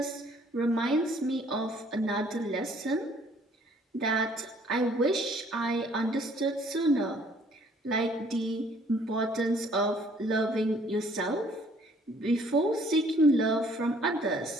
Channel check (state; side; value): normal; both; correlation 0.60